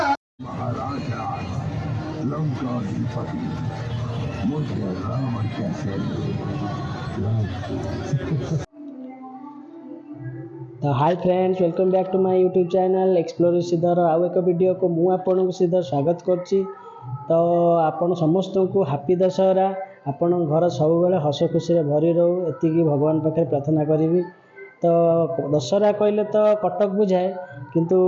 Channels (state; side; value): identical; both; correlation 1.00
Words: महाराजा लंकाधिपति मुझे राम कैसे तो hi friends, welcome back to my YouTube channel explore Sridhar. आउ एक वीडियो को मु आपन श्रीधर स्वागत करछि। तो आपण समस्त को हैप्पी दशहरा। आपण घर सब बेले हस खुशी रे भरी रहू एतिकी भगवान पाखे प्रार्थना करी। तो दशहरा कहले तो कटक बुझाए, किंतु